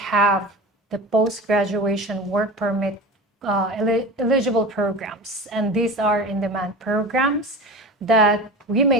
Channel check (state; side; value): normal; both; correlation 0.32